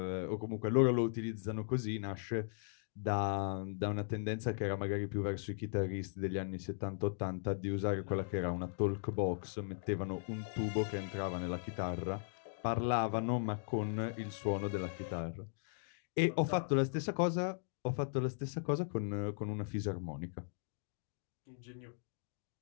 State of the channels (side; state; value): right; silent; digital silence